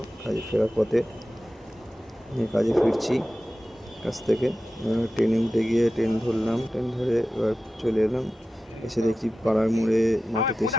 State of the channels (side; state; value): both; normal; correlation 0.93